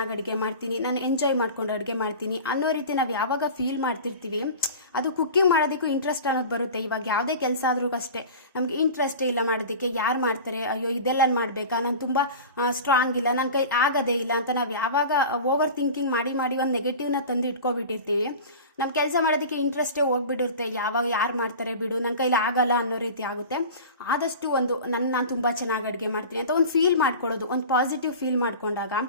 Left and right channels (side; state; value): both; inverted; correlation -0.35